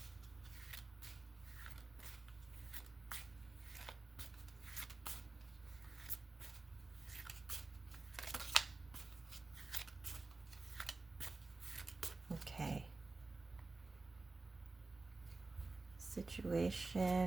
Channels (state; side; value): quieter; left; 3.5 dB